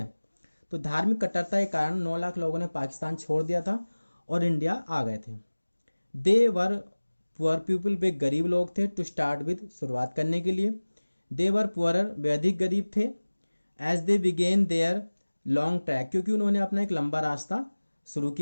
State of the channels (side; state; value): both; inverted; correlation -1.00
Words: तो धार्मिक कट्टरता के कारण 9 लाख लोगों ने पाकिस्तान छोड़ दिया था और इंडिया आ गए थे। दे वर पुअर पीपल, वे गरीब लोग थे, टू स्टार्ट विद, शुरुआत करने के लिए। दे वर पुअरर, वे अधिक गरीब थे। As they began their long track, क्योंकि उन्होंने अपना एक लंबा रास्ता शुरू